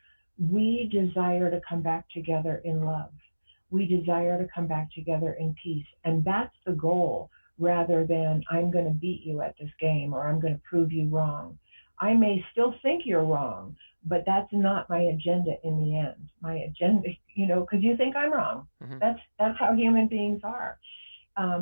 we desire to come back together in love. We desire to come back together in peace. And that's the goal, rather than I'm going to beat you at this game or I'm going to prove you wrong. I may still think you're wrong, but that's not my agenda in the end. My agenda, because you think I'm wrong. Hmm. That's how human beings are.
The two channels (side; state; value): both; inverted; correlation -1.00